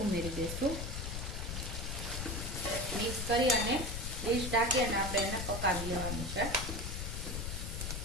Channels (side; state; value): left; noise; rumble, 4 dB below the sound